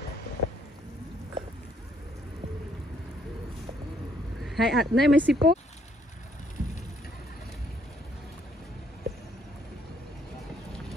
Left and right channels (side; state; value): both; normal; correlation 0.67